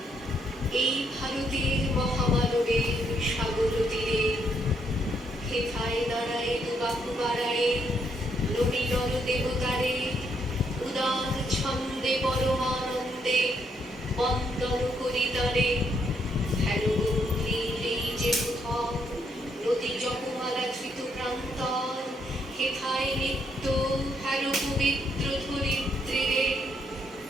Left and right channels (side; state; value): both; normal; correlation 0.74